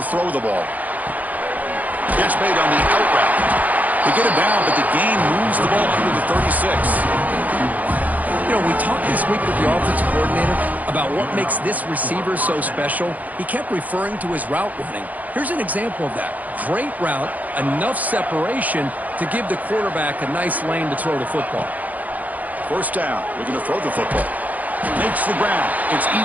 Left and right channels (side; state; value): left; late; 0.078 ms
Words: throw the ball. Catch made on the out route. They get it down, but the gain moves the ball under the 36. You know, we talked this week with the offensive coordinator about what makes this receiver so special. He kept referring to his route running. Here's an example of that. Great route, enough separation to give the quarterback a nice lane to throw the football. First down, looking to throw the football. Makes the ground. It's